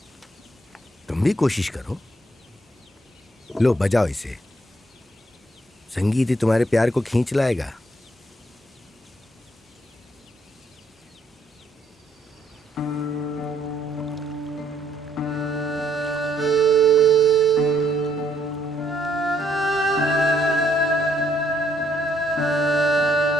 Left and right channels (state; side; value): normal; both; correlation 0.70